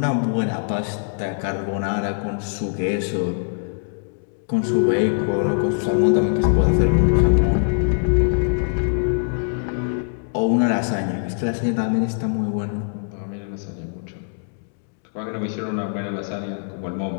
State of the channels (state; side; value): silent; right; digital silence